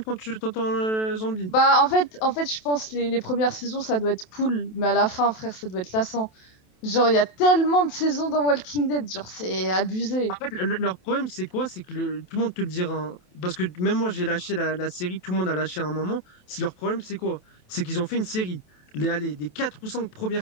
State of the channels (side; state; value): right; late; 27 ms